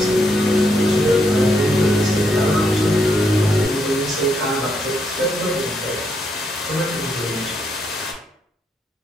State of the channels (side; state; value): both; normal; correlation 0.77